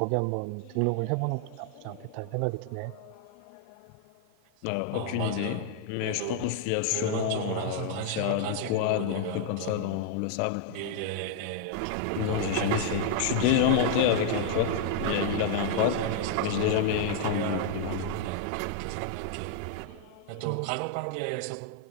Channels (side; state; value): both; different; correlation -0.01